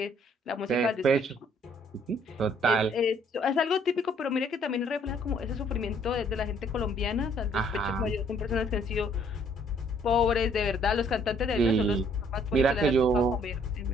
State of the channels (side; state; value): both; normal; correlation 0.63